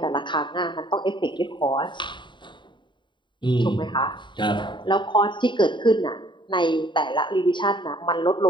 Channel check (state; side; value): late; right; 0.23 ms